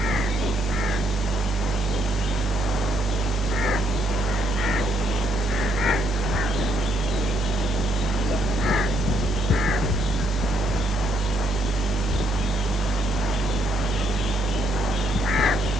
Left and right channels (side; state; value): both; normal; correlation 0.73